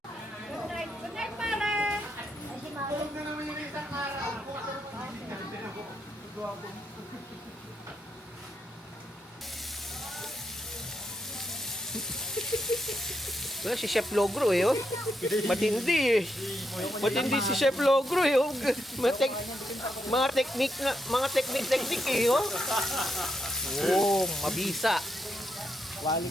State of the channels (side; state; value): both; normal; correlation 0.81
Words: Good night, pare! Tulog na naman yung isang araw. Well, si Chef Logro eh, oh. Matindi eh. Matindi si Chef Logro eh, oh. Mga technique eh, oh. Oh, mabisa.